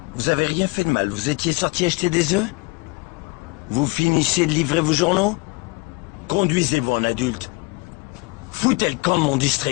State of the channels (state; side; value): quieter; right; 28.7 dB